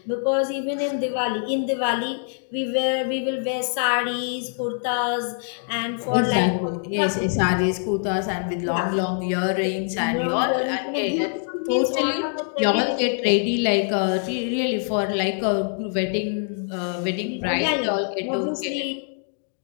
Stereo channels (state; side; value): silent; right; 60 dB below the other